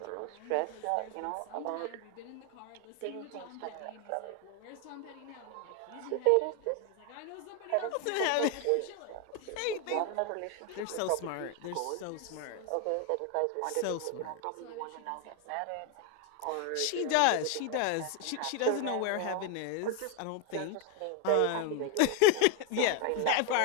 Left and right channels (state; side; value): different; both; correlation 0.01